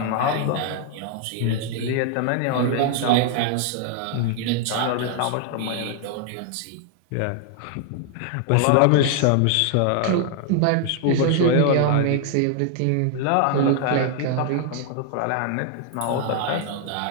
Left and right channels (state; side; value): different; both; correlation 0.00